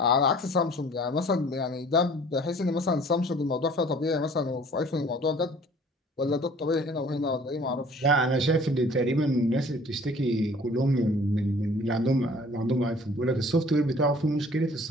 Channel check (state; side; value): normal; both; correlation 0.52